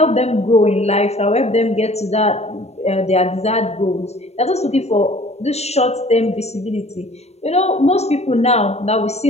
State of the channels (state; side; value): late; right; 0.31 ms